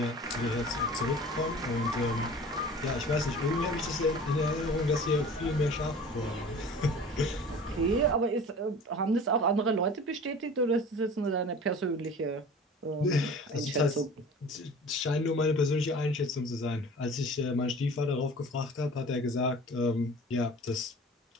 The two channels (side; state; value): both; normal; correlation 0.42